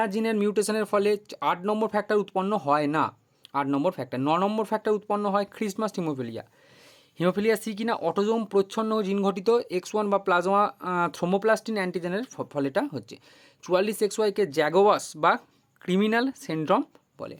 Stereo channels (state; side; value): identical; both; correlation 1.00